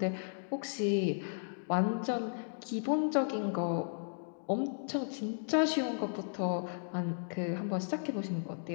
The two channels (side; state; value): right; silent; digital silence